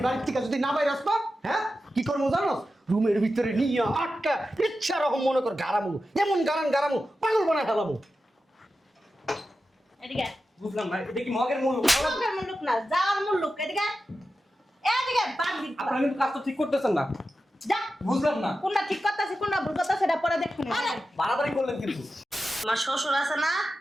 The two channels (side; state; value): both; normal; correlation 0.92